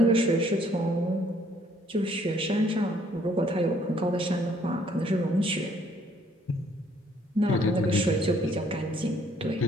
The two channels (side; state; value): both; normal; correlation 0.63